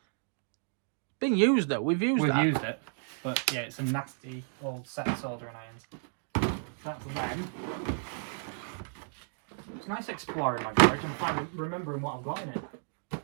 Been used though. We've used it, but yeah, it's a nasty old set of soldering irons. That's them. It's nice exploring my garage and remembering what I've got in it.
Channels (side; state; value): left; silent; digital silence